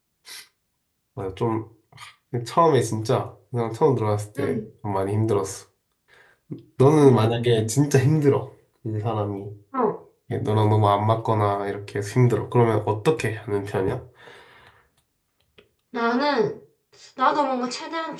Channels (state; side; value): identical; both; correlation 1.00